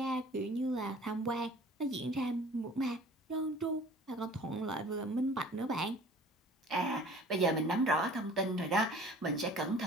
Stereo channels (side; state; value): both; normal; correlation 0.47